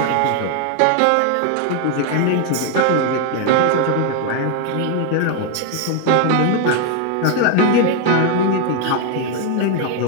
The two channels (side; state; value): both; different; correlation 0.00